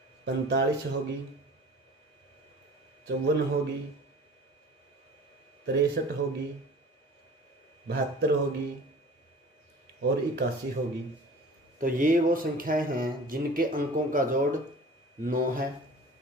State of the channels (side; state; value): both; normal; correlation 0.43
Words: 45 होगी, 54 होगी, 63 होगी, 72 होगी और 81 होगी। तो ये वो संख्याएं हैं जिनके अंकों का जोड़ 9 है।